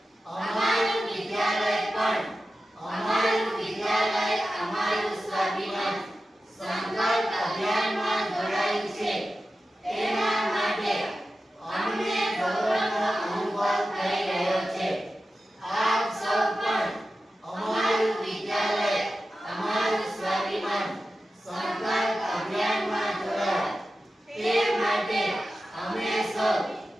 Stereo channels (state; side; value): normal; both; correlation 0.93